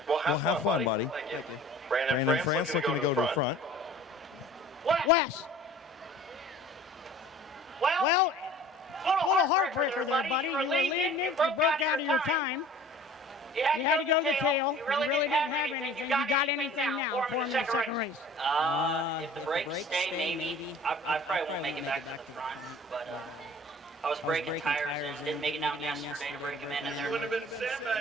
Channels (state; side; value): normal; both; correlation 0.46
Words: Well, have fun, buddy. Thank you. Brandon France looking to go to the front. Wes. Well, little heartbreaker there, buddy. You were leading it. You broke out of your time. You had to go to the tail. You really didn't have anything. You got anything now for him in the second race? If the brakes stay, maybe. I probably won't make it back to the front. But I was breaking tires in, didn't make it down yesterday to break them in.